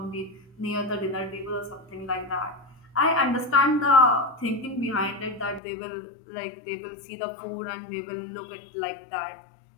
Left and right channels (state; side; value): drops out; right; at 5.6 s